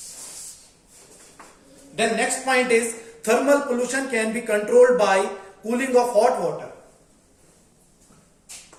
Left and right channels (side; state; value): both; identical; correlation 1.00